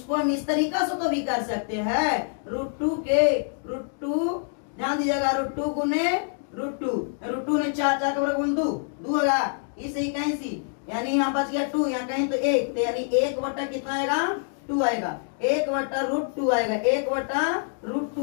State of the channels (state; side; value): silent; right; digital silence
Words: हम इस तरीका से तो भी कर सकते हैं, √2 ध्यान दीजिएगा, √2 गुने √2 ने 4 4 का वर्ग 2 होगा, इसे 81, यानी यहाँ बच गया 2, यहाँ कहीं तो 1, तो यानी 1 कितना आएगा 2 आएगा, 1/√2 आएगा,